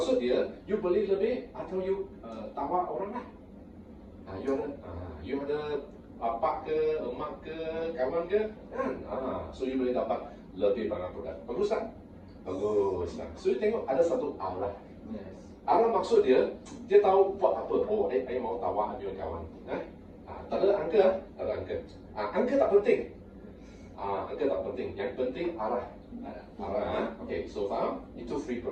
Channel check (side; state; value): both; identical; correlation 1.00